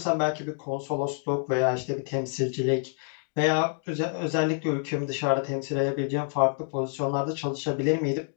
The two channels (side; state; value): right; silent; 60 dB below the other